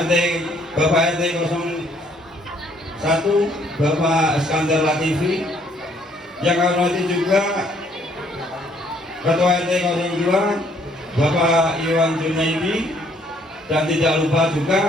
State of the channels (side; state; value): both; normal; correlation 0.65